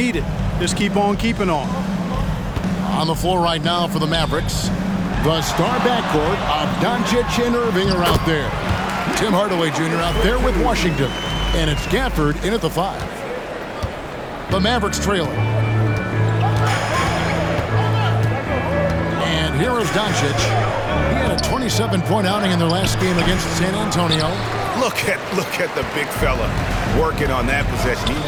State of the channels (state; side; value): identical; both; correlation 1.00